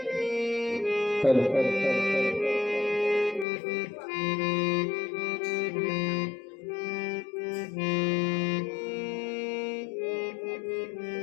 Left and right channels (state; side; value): drops out; right; at 3.5 s